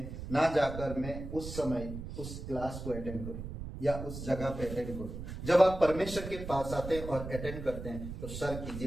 ना जाकर मैं उस समय उस क्लास को अटेंड करूं या उस जगह पे अटेंड करूं। जब आप परमेश्वर के पास आते हैं और अटेंड करते हैं तो स्वर्ग की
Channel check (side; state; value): right; noise; rumble, 8 dB below the sound